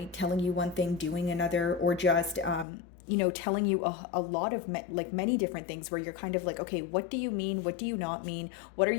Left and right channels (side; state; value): right; drops out; at 2.7 s